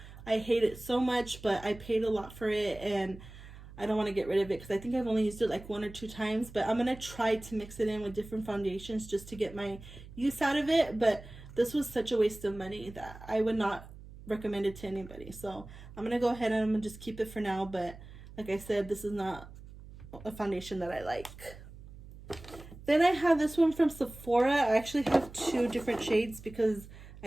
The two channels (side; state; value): right; noise; hum, 17 dB below the sound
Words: I hate it so much, but I paid a lot for it and I don't want to get rid of it because I think I've only used it like 1 or 2 times, but I'm going to try to mix it in with different foundations just to get my use out of it. But this was such a waste of money that I would not recommend it to anybody. So I'm going to go ahead and I'm going to just keep it for now. But like I said, this is not a foundation that I like. Then I have this one from Sephora. I actually have 2 different shades because